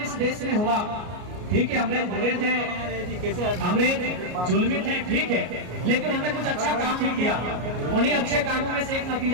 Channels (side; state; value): left; late; 33 ms